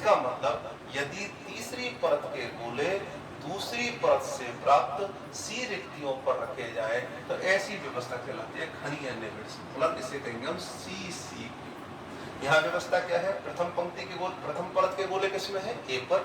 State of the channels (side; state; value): both; identical; correlation 1.00